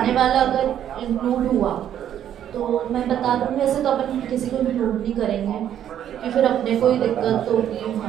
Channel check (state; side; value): quieter; left; 10.3 dB